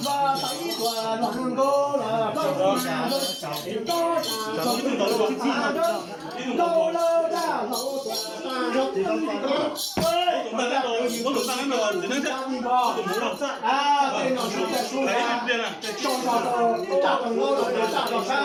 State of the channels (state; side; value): identical; both; correlation 1.00